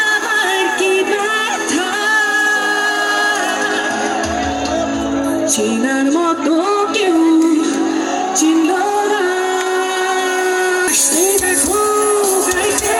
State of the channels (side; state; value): both; identical; correlation 1.00